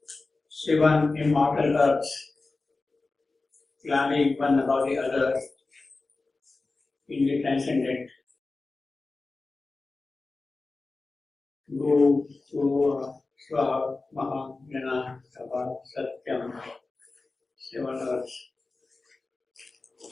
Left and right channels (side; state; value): right; quieter; 3.6 dB